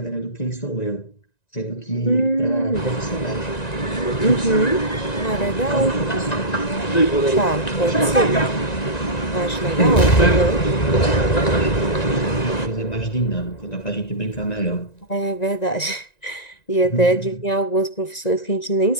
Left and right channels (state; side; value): late; right; 1.9 ms